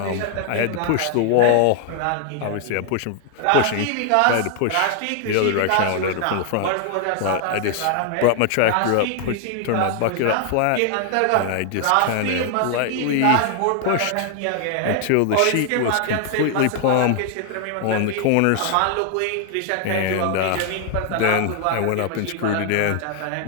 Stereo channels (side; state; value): both; different; correlation 0.00